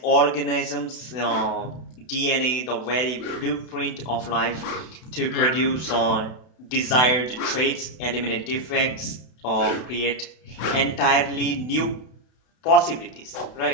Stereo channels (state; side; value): late; right; 32 ms